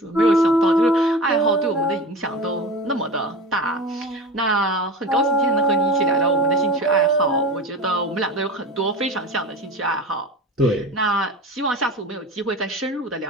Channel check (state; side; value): normal; both; correlation 0.31